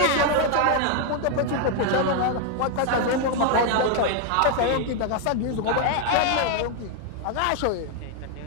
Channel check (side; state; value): both; different; correlation 0.00